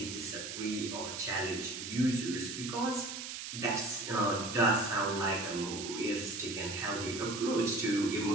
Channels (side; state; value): right; noise; hiss, 7 dB below the sound